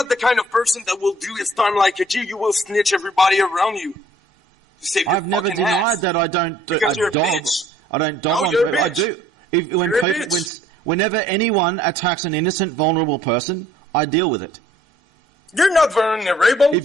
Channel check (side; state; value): both; normal; correlation 0.59